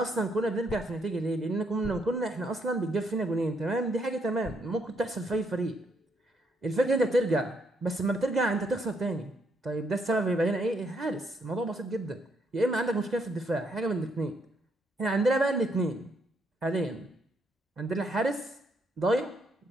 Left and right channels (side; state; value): both; normal; correlation 0.74